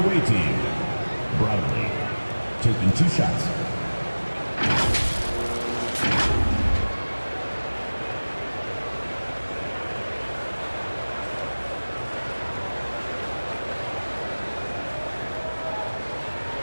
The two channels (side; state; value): both; inverted; correlation -1.00